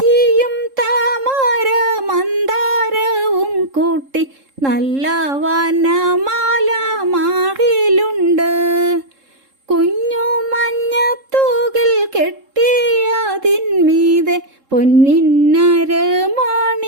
താമര മന്ദാരവും കൂട്ടി നല്ല വനമാല മാറിലുണ്ട്. കുഞ്ഞു മഞ്ഞത്തൂകിൽ കെട്ടിയതിന്മീതെ പൊന്നിന്നരമണി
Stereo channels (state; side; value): late; left; 3.7 ms